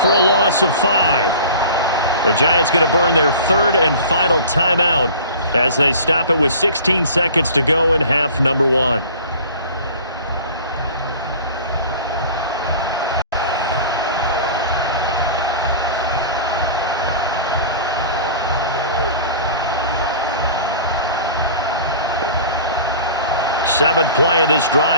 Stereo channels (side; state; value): both; inverted; correlation -0.41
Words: a loss of 5. The Giants going to burn their third and final timeout as they stop it with 16 seconds to go in half number 1. Seventh play of this